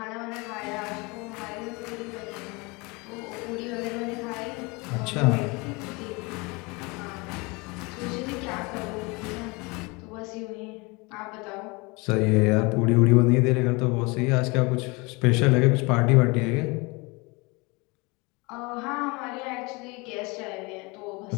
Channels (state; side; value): quieter; right; 26.9 dB